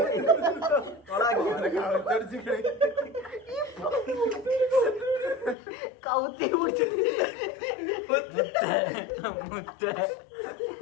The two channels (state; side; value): drops out; right; at 5.6 s